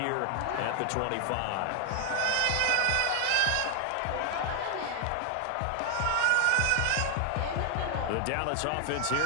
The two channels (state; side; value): different; both; correlation 0.00